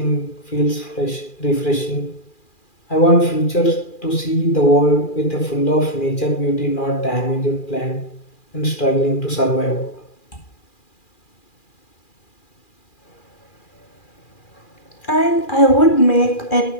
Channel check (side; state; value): right; late; 2.4 ms